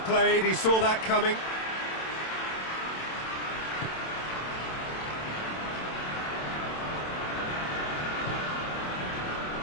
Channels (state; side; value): late; right; 27 ms